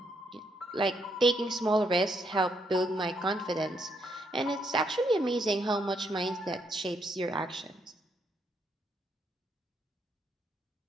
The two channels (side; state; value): both; normal; correlation 0.75